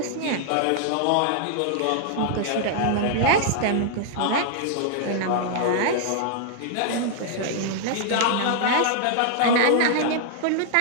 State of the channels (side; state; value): both; different; correlation -0.01